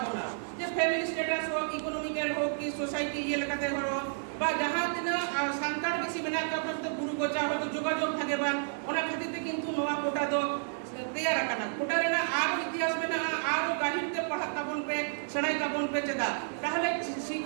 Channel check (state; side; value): silent; left; 57 dB below the other